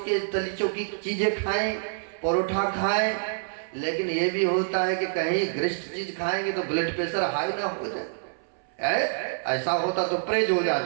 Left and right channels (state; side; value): silent; left; 60 dB below the other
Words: चौकी चीजें खाएं, परोठा खाएं, लेकिन ये भी होता है कि कहीं ग्रिस्ट चीज खाएंगे तो ब्लड प्रेशर हाई ना हो जाए। ऐसा होता तो प्रेज हो